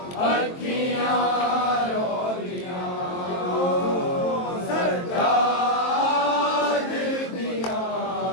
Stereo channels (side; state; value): right; late; 23 ms